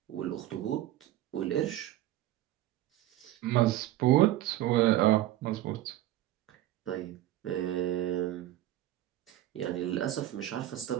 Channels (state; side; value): quieter; left; 14.3 dB